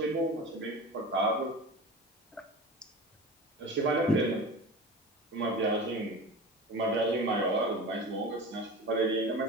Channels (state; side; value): normal; both; correlation 0.33